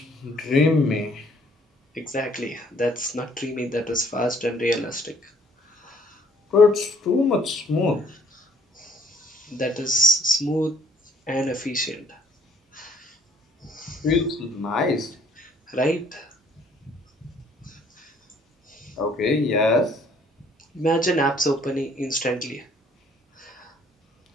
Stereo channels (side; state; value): both; normal; correlation 0.60